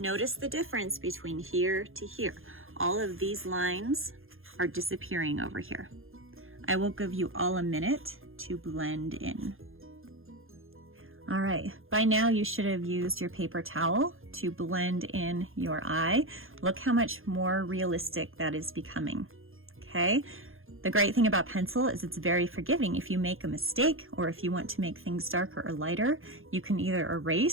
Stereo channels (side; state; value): left; late; 0.60 ms